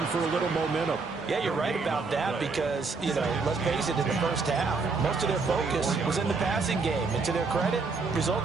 for a little momentum. Yeah, you're right about that because, let's face it, in the first half, most of their focus was in the passing game. And to their credit,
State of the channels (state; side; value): quieter; left; 4.3 dB